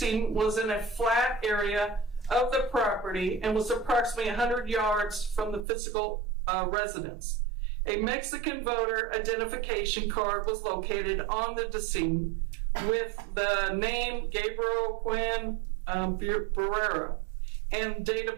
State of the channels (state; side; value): drops out; left; at 5.7 s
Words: was in a flat area of the property and was approximately 100 yards from the physical residence. A Mexican voter identification card was located on the decedent with the name Gabriel Cuen Buitimea and date